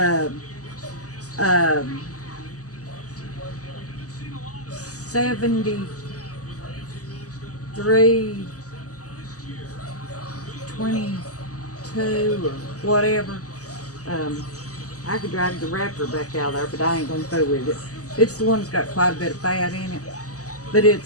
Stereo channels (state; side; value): late; right; 0.66 ms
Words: 7322 or whatever. I could drag the wrapper back out there, but I ain't going to fool with it. It's the one that's got quite a bit of fat in it. But